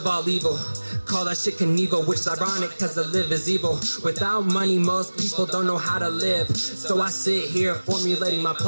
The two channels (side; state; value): both; inverted; correlation -1.00